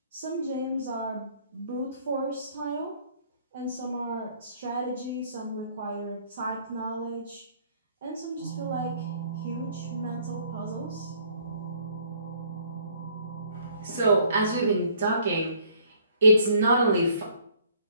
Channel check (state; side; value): inverted; both; correlation -0.60